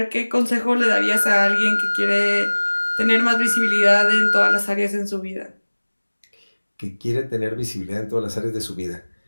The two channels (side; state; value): both; inverted; correlation -1.00